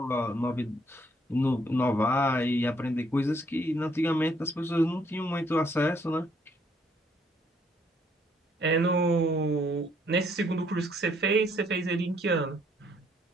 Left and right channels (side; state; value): both; normal; correlation 0.67